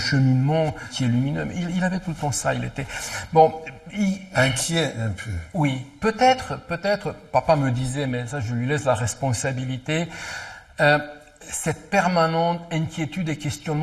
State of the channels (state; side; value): identical; both; correlation 1.00